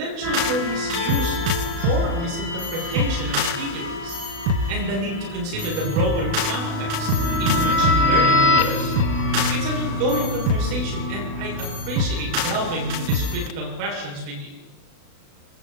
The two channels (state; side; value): late; left; 36 ms